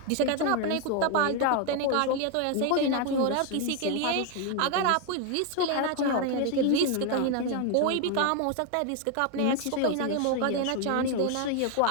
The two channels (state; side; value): different; both; correlation 0.01